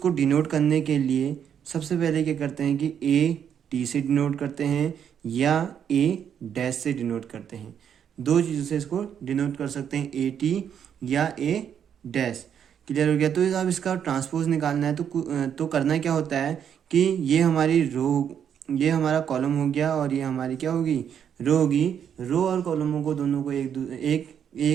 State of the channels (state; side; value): quieter; left; 8.5 dB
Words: डिनोट करने के लिए सबसे पहले क्या करते हैं कि ए टी से डिनोट करते हैं या ए डैश से डिनोट करते हैं। दो चीज़ों से इसको डिनोट कर सकते हैं, ए टी या ए डैश। क्लियर हो गया। तो अब इसका ट्रांसपोज निकालना है तो करना क्या होता है कि ये हमारी ये हमारा कॉलम हो गया और ये हमारी क्या होगी, रो होगी। रो और कॉलमों को दोनों को